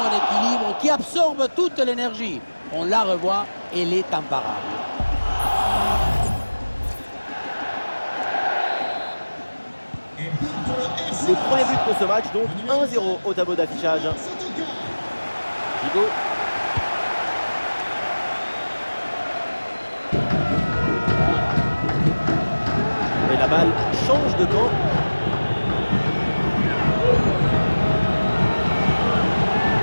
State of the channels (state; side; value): inverted; both; correlation -1.00